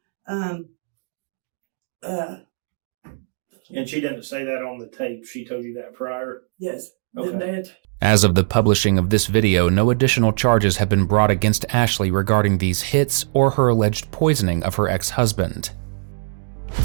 and she didn't say that on the tape. She told you that prior? Yes. Okay. As of the publishing of this video, no additional charges have been brought against Ashley regarding these hits or her alleged poisoning of her ex-husband.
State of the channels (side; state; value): left; silent; digital silence